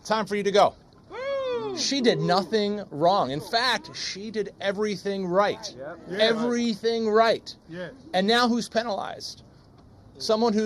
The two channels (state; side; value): identical; both; correlation 1.00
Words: Time for you to go. She did nothing wrong. In fact, she did everything right. Everything right. Yeah. And now who's penalized? Someone